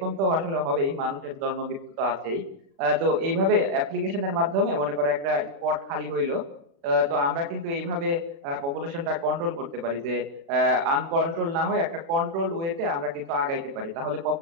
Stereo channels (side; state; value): left; late; 36 ms